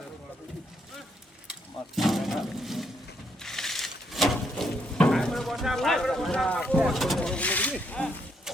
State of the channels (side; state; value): both; normal; correlation 0.74